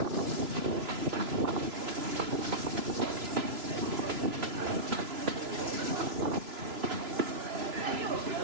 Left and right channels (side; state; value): left; late; 3.0 ms